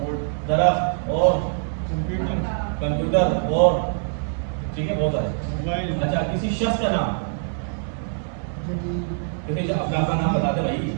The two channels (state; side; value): silent; left; digital silence